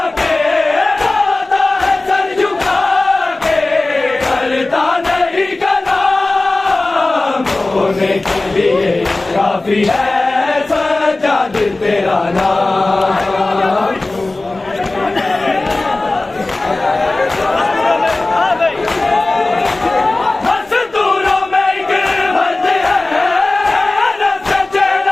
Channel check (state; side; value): quieter; right; 3.0 dB